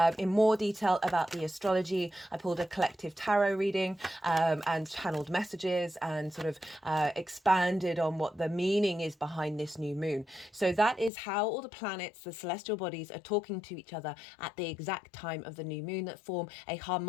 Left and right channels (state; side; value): drops out; right; at 11.1 s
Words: in more detail about the astrology. I pulled a collective tarot reading and channeled messages and sort of expanded on what the meaning is behind this new moon. So that is how all the planets, the celestial bodies, are talking to each other at the exact time of the new moon that form a